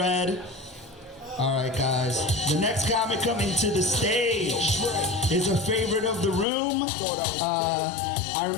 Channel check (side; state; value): right; drops out; at 6.5 s